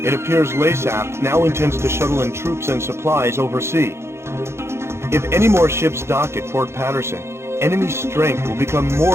appears Laysath now intends to shuttle in troops and supplies overseas. If any more ships dock at Port Patterson, enemy strength will become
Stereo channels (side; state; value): left; late; 0.13 ms